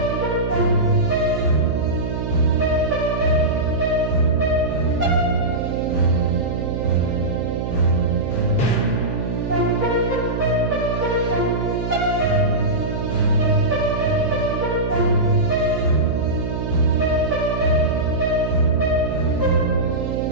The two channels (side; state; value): right; noise; hum, 3 dB below the sound